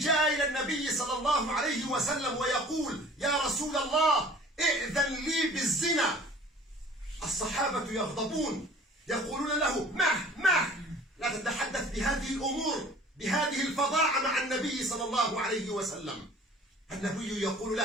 إلى النبي صلى الله عليه وسلم ويقول: يا رسول الله ائذن لي بالزنا. الصحابة يغضبون يقولون له: مه لا تتحدث بهذه الأمور بهذه الفظاعة مع النبي صلى الله عليه وسلم. النبي يقول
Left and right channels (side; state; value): both; normal; correlation 0.49